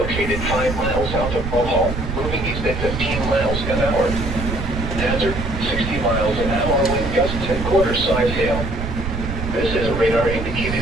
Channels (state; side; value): noise; right; rumble, 5 dB below the sound